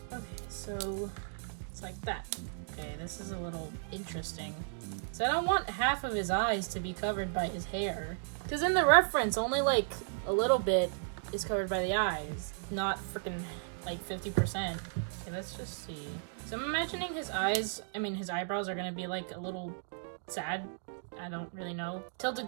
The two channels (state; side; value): silent; left; digital silence